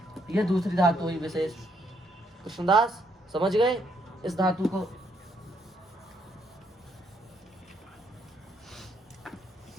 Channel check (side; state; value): both; normal; correlation 0.73